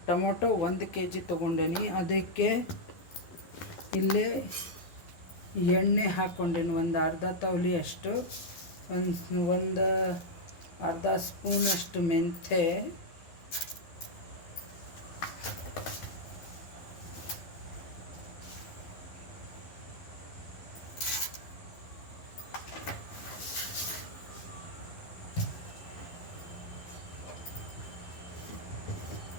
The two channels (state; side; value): late; right; 11 ms